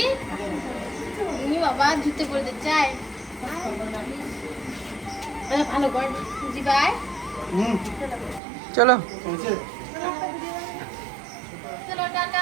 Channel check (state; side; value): drops out; left; at 8.4 s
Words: তুমি বাবা জুতে পড়তে চাই, ভালো কর জিবাই। চলো চলো টাটা,